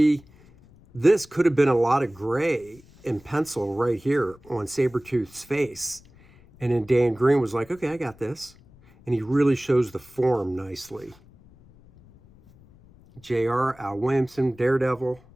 this could have been a lot of gray in pencil right here on Sabretooth's face. And then Dan Green was like, okay, I got this. And he really shows the form nicely. JR, Al Williamson, Daredevil.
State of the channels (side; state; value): left; noise; rumble, 26 dB below the sound